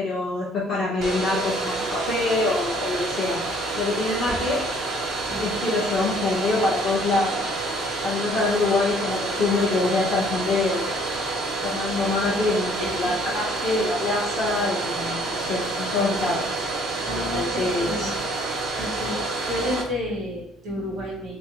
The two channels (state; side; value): normal; both; correlation 0.59